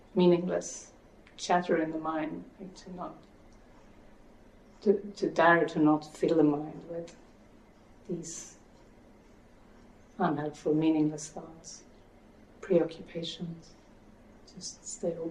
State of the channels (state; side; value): identical; both; correlation 1.00